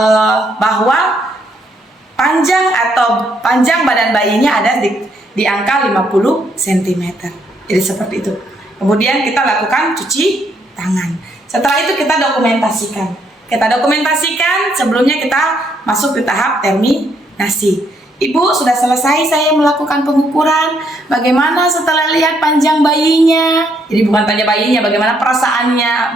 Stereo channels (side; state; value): both; normal; correlation 0.72